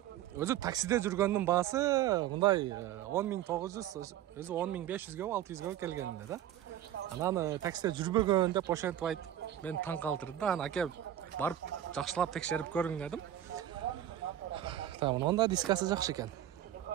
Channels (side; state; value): left; quieter; 11.9 dB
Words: өзү таксиде жүргөндүн баасы мындай $10.900, өзү $10.500 600 келгенде да. Анан таксиде жүрбөгөн деп ошентип айтып, мен таң калтырды да. Анан аке барып жакшылап текшерип көрүң дедим. Онда дискасы жакшы экен.